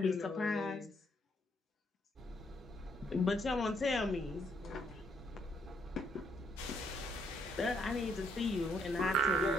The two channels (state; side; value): normal; both; correlation 0.72